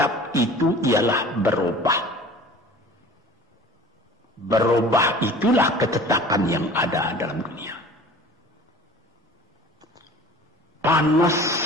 itu ialah berubah. Berubah itulah ketetapan yang ada dalam dunia. Panas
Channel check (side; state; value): both; normal; correlation 0.44